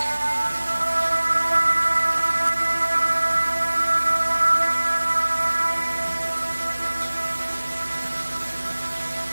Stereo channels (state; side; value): inverted; both; correlation -1.00